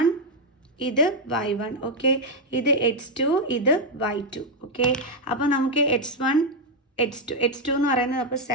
ഇത് y1, ഓക്കെ, ഇത് x2, ഇത് y2. ഓക്കെ, അപ്പോൾ നമുക്ക് x1 x2 എന്ന് പറയുന്നത് അപ്പോൾ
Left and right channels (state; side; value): normal; both; correlation 0.01